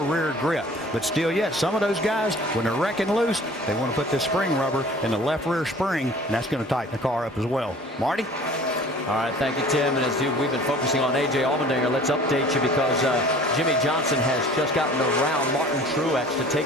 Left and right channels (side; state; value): both; normal; correlation 0.48